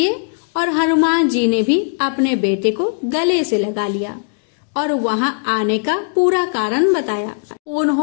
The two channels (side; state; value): right; silent; digital silence